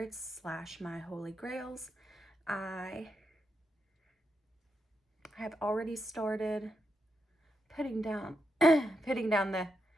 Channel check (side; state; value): both; normal; correlation 0.84